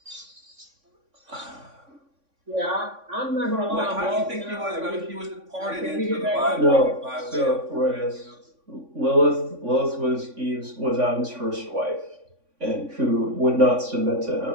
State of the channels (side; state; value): left; late; 3.5 ms